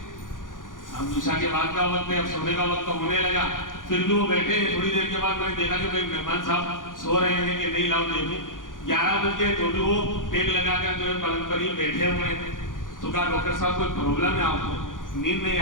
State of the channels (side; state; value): right; late; 0.89 ms